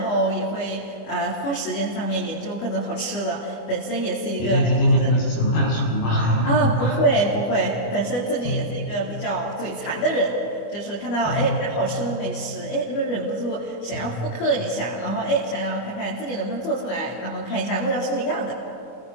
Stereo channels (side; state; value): right; late; 25 ms